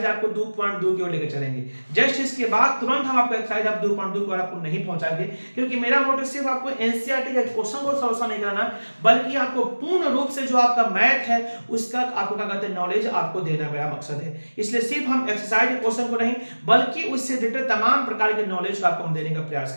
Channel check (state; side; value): inverted; both; correlation -1.00